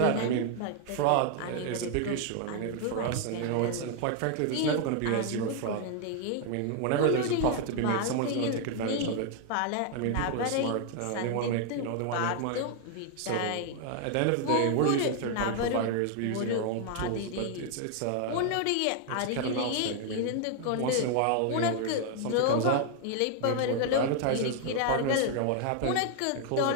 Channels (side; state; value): both; different; correlation 0.00